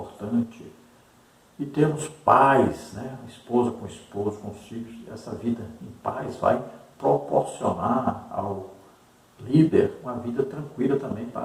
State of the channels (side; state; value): both; identical; correlation 1.00